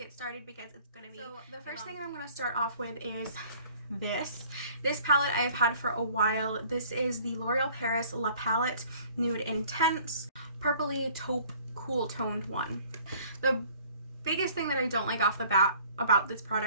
started because it's going to be... So the first thing I'm going to start off with is this palette I've had for a while. This is the L'Oreal Paris La Palette Nude Intense Purpley Taupe Cool Toned one. The biggest thing that I don't like off the bat about this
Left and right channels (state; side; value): inverted; both; correlation -0.55